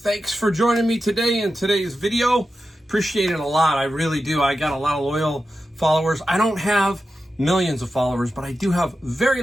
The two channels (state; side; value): normal; both; correlation 0.91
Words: for joining me today in today's video. Appreciate it a lot. I really do. I got a lot of loyal followers. I don't have millions of followers, but I do have very